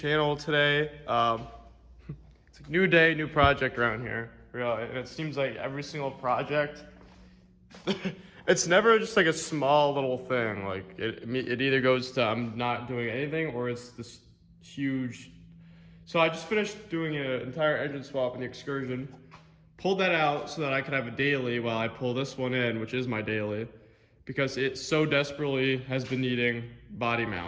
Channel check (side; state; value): both; identical; correlation 1.00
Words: today. It's a new day, new project around here, really, and it seems like every single project, it's never just like a small little thing. Like it either goes to I'm not doing anything or it's this huge. So I just finished doing an entire engine swap in the Excursion, pulled that out so that I could have a daily while I pull this one in, which is my daily, because it so desperately has been needing body